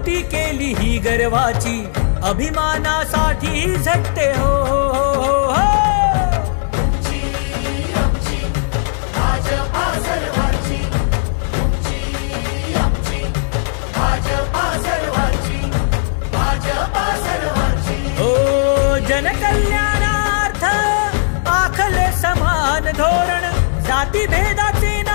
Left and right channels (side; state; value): right; silent; digital silence